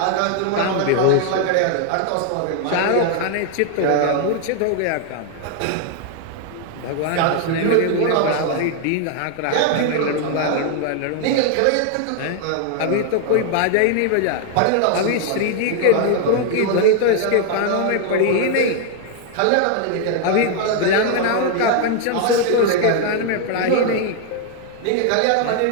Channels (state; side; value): different; both; correlation 0.00